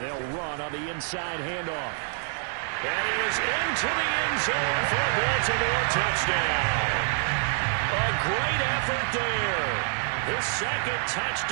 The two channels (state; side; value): silent; left; 60 dB below the other